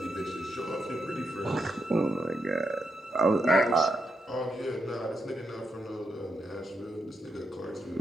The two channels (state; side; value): normal; both; correlation 0.82